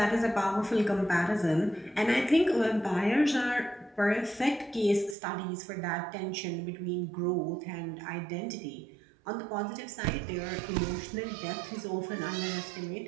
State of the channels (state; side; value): drops out; left; at 5.2 s